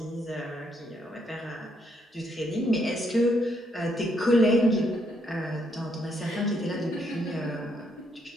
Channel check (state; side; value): normal; both; correlation 0.74